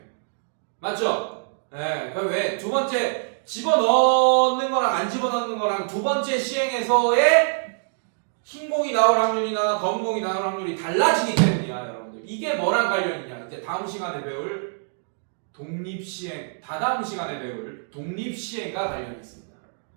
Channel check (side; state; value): left; silent; digital silence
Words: 맞죠? 네. 그럼 왜? 두 번째 집어넣는 거랑 안 집어넣는 거랑 두 번째 시행에서의 흰 공이 나올 확률이나 검은 공이 나올 확률이 달라지기 때문이야, 여러분들. 이게 뭐랑 관련이냐? 이제 다음 시간에 배울 독립시행, 다다음 시간에 배울 독립시행과 관련이 있습니다.